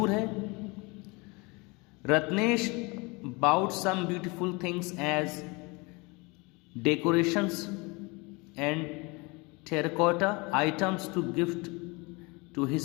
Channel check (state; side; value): quieter; right; 27.0 dB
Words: है। Ratnesh bought some beautiful things as decorations and terracotta items to gift to